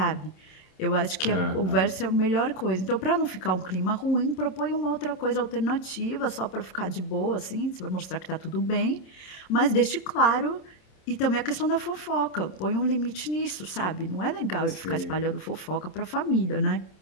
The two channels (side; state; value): right; late; 27 ms